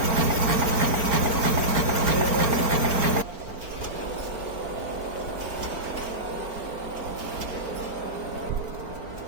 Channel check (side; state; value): left; late; 4.4 ms